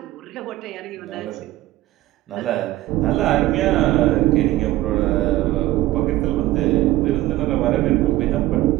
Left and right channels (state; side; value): quieter; left; 16.4 dB